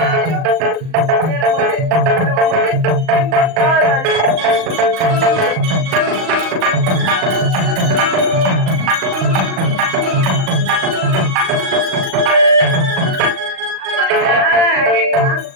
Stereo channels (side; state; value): left; late; 38 ms